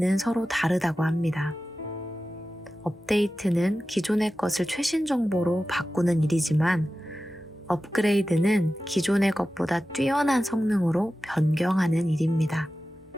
서로 다르다고 합니다. 업데이트는 기존의 것을 최신 정보로 바꾸는 일이지만 업그레이드는 기존의 것보다 뛰어난 성능으로 변경하는 일입니다.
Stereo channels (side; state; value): both; normal; correlation 0.94